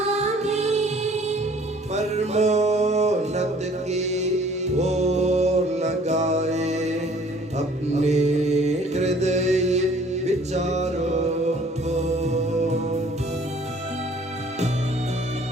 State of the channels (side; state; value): both; normal; correlation 0.55